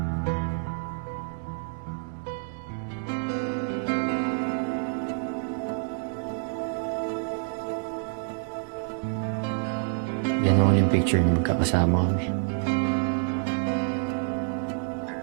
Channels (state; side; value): silent; left; digital silence